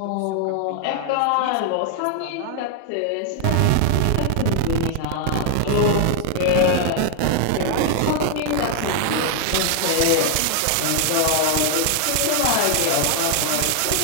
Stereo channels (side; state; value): both; different; correlation 0.00